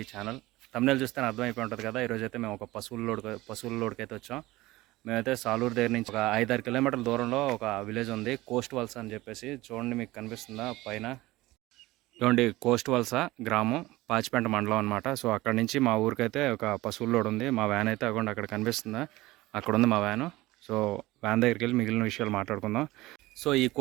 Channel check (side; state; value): left; quieter; 18.9 dB